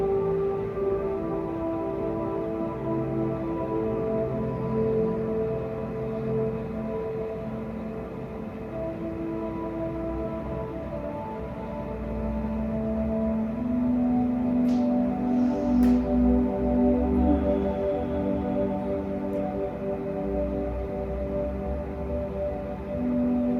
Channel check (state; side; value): identical; both; correlation 1.00